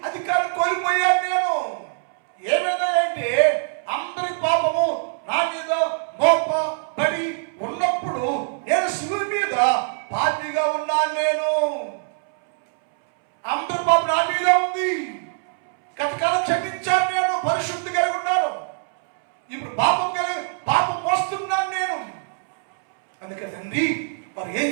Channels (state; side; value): silent; left; 64 dB below the other